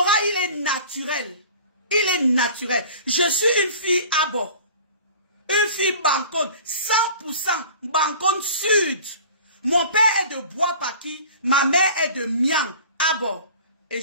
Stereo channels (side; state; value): both; inverted; correlation -0.43